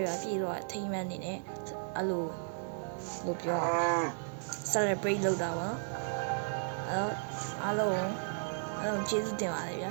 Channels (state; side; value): silent; left; 55 dB below the other